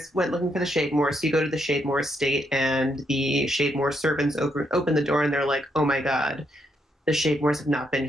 went looking for the Shademore, so you go to the Shademore estate, and the Shademore servants open the door, and they're like, "Oh my god, the Shademores have not been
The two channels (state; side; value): normal; both; correlation 0.77